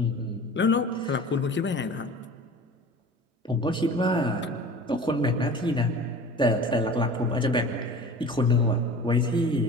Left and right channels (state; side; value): normal; both; correlation 0.40